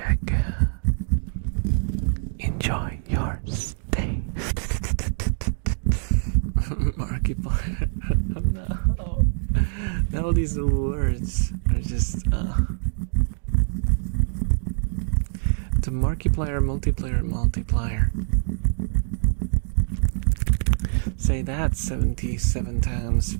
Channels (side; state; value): left; silent; digital silence